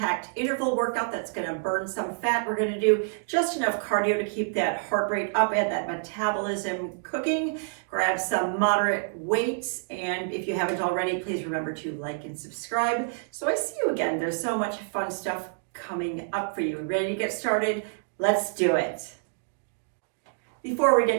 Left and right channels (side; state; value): left; silent; digital silence